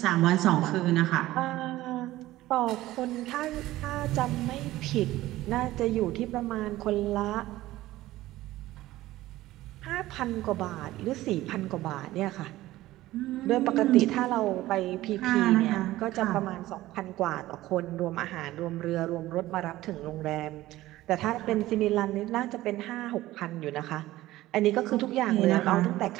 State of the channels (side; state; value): left; quieter; 16.3 dB